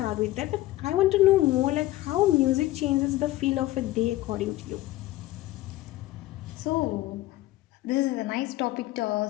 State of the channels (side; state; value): right; quieter; 16.6 dB